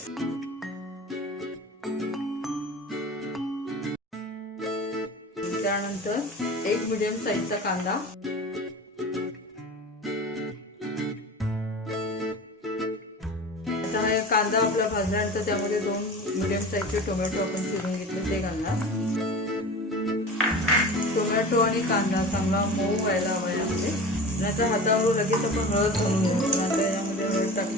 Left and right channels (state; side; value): normal; both; correlation 0.34